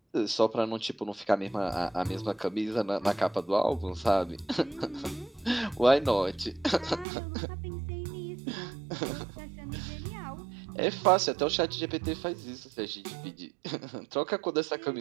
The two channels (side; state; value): left; drops out; at 7.1 s